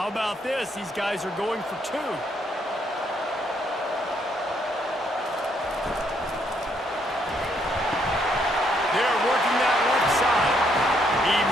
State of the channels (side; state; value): both; normal; correlation 0.72